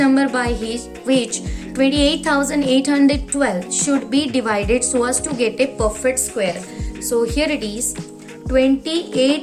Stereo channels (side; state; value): both; identical; correlation 1.00